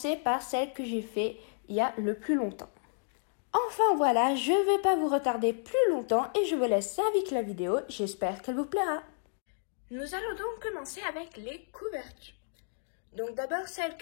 par celle que j'ai fait il y a le plus longtemps. Enfin voilà, je ne vais pas vous retarder plus longtemps et je vous laisse avec la vidéo. J'espère qu'elle vous plaira. Nous allons donc commencer avec les couvertures. Donc d'abord celle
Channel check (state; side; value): silent; right; digital silence